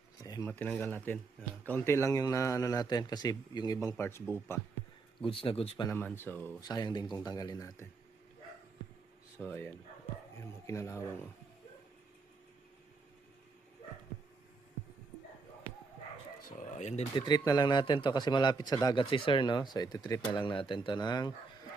So, matinanggal natin. Kaunti lang yung ano natin kasi yung ibang parts buo pa. Goods na goods pa naman. So, sayang din kung tanggalin natin. So, ayan. Ayan, mga kinalawang. Oh. So, ayan din. Titreat na lang natin to kasi malapit sa dagat si sir, no? So, ititreat na lang natin to ng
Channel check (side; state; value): left; quieter; 4.2 dB